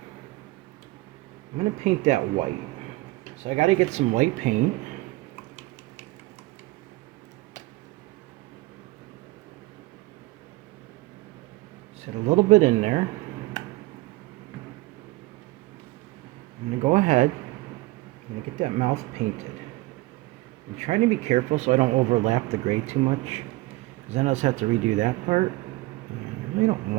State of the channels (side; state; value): left; quieter; 20.0 dB